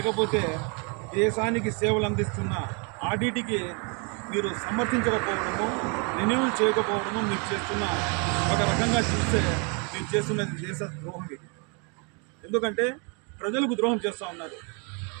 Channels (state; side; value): quieter; left; 34.6 dB